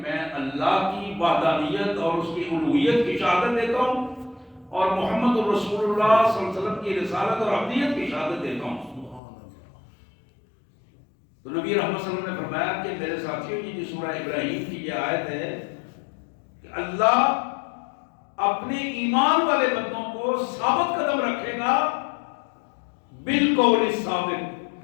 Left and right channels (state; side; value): drops out; right; at 9.2 s